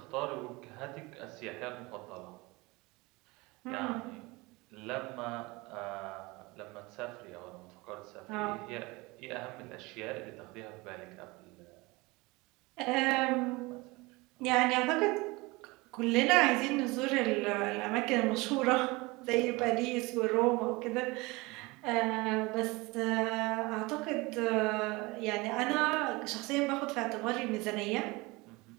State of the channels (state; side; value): quieter; left; 23.7 dB